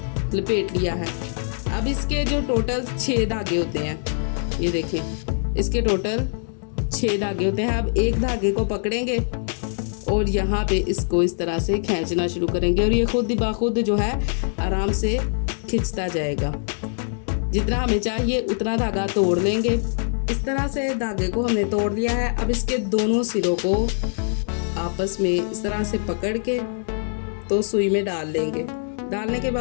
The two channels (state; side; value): silent; right; digital silence